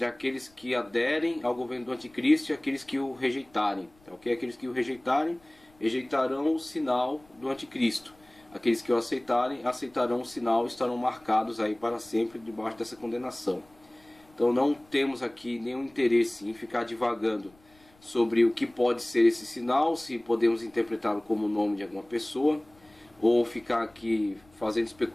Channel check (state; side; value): noise; left; rumble, 30 dB below the sound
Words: aqueles que aderem ao governo do anticristo e aqueles que o rejeitarem, tá ok? Aqueles que o rejeitarem, rejeitarão o sinal do anticristo. Aqueles que o aceitarão o sinal e estarão marcados aí para sempre debaixo dessa condenação. Então não temos aqui nenhum interesse em ficar divagando sobre o que pode ser esse sinal, se podemos interpretá-lo como o nome de alguma pessoa, ou ficar aqui fazendo